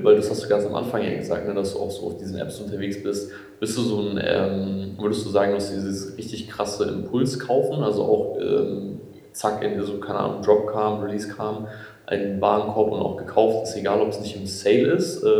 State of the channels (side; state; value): both; identical; correlation 1.00